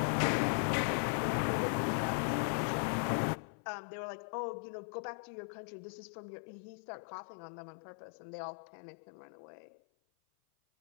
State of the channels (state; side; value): silent; right; 52 dB below the other